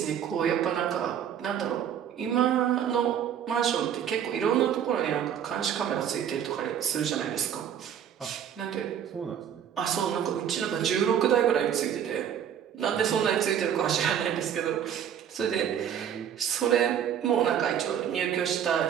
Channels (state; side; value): quieter; left; 9.2 dB